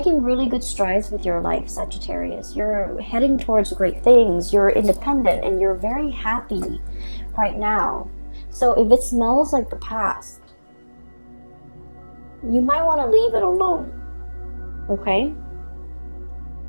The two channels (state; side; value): inverted; both; correlation -1.00